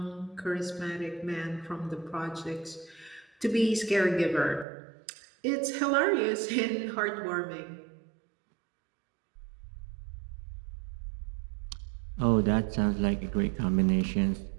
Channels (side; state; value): left; drops out; at 4.7 s